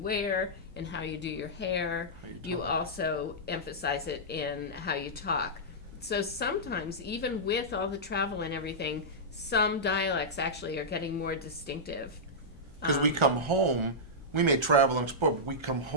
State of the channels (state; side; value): normal; both; correlation -0.11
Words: and how you do your hair, you also emphasize it in how you talk. So sometimes, even with all the travel and everything, some dialects actually are getting more distinctive. Because we come home, we may travel and explore, but we come